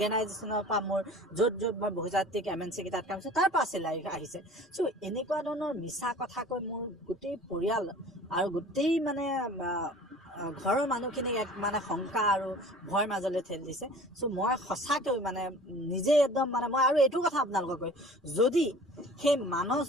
পৰা মোৰ য'ত মই বহুজাতিক MNC কেইটাত কাম কৰিছোঁ তাৰ পৰা চেলাৰী আহিছে। চ' এনেকুৱা ধৰণৰ মিছা কথা কৈ মোৰ গোটেই পৰিয়াল আৰু গোটেই ঘৰৰ মানুহখিনিক এক শংকা আৰু ভয়ৰ মাজলৈ ঠেলি দিছে। চ' মই সঁচাকৈ নিজে একদম মই আৰু এইটো কথা আপোনালোকক কৈ, যদি সেই মানস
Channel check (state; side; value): normal; both; correlation 0.44